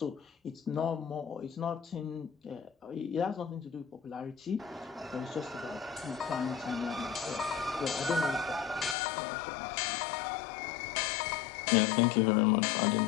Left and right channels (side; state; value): right; drops out; at 9.0 s